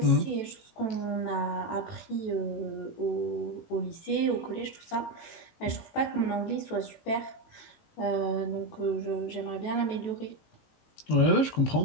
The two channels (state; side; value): late; right; 18 ms